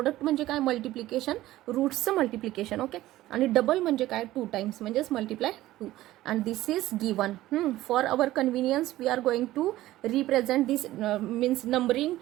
म्हणजे काय मल्टिप्लिकेशन, रूट्सचं मल्टिप्लिकेशन. ओके, आणि डबल म्हणजे काय 2 टाइम्स म्हणजेच multiply 2. And this is given. For our convenience we are going to represent this means numbering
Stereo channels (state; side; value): quieter; left; 15.7 dB